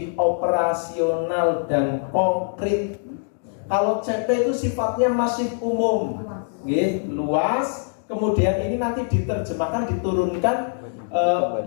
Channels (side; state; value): right; silent; digital silence